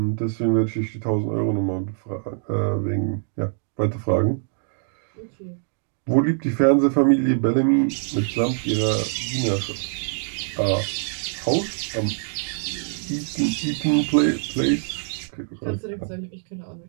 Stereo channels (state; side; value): silent; left; 62 dB below the other